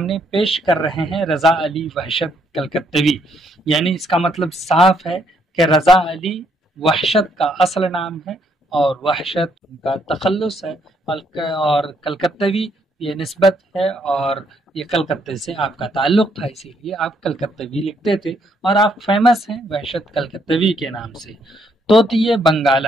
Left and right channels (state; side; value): normal; both; correlation 0.71